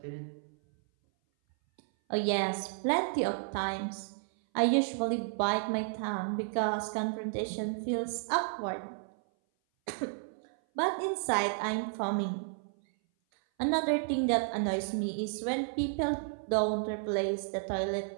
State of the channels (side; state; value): left; silent; 56 dB below the other